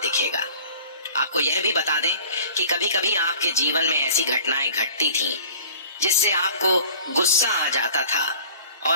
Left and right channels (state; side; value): inverted; both; correlation -0.47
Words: दिखेगा। आपको यह भी बता दें कि कभी कभी आपके जीवन में ऐसी घटनाएं घटती थीं जिससे आपको गुस्सा आ जाता था